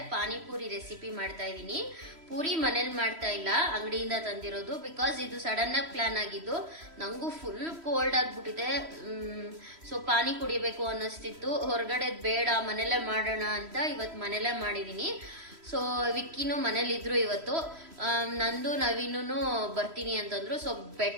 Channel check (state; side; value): late; left; 3.1 ms